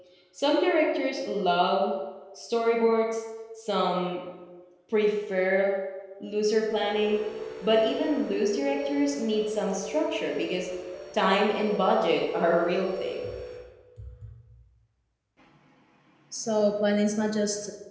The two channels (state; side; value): identical; both; correlation 1.00